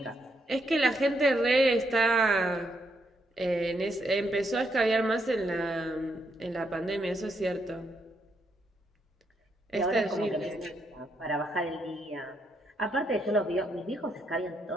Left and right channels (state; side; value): normal; both; correlation 0.77